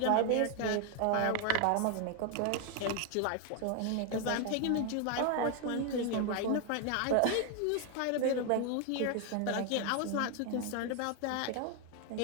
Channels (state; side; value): different; both; correlation 0.01